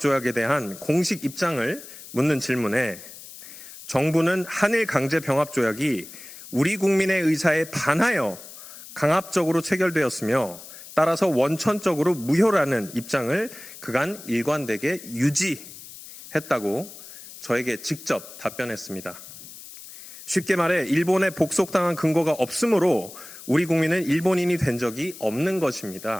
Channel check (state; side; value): noise; left; hiss, 16 dB below the sound